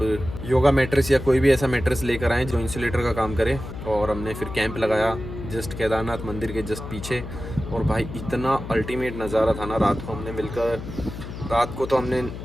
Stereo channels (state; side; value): noise; left; hum, 9 dB below the sound